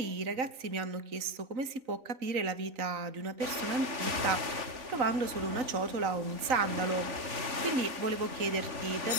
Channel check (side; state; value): left; late; 3.9 ms